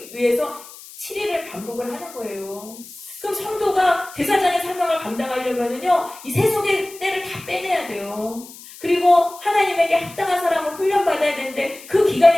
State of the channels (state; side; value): noise; left; hiss, 18 dB below the sound